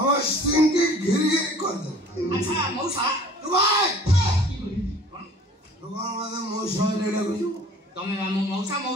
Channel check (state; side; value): normal; both; correlation 0.49